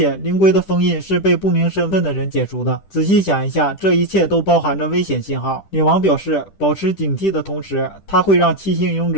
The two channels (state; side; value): late; right; 10 ms